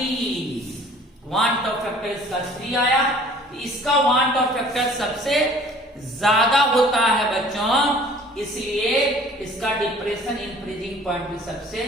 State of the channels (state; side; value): normal; both; correlation 0.51